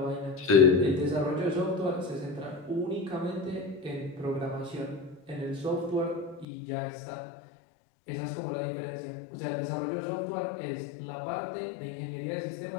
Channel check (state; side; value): drops out; right; at 6.5 s